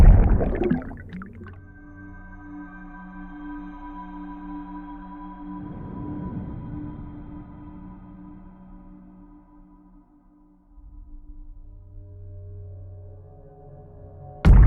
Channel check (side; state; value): both; identical; correlation 1.00